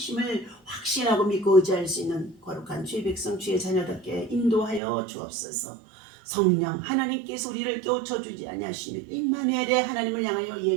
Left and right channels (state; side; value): drops out; left; at 4.8 s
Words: 확신하고 믿고 의지할 수 있는 거룩한 주의 백성, 주의 자녀답게 인도하여 주옵소서. 성령 하나님께서 우리를 깨우쳐 주지 아니하시면 임마누엘의 하나님을 향하여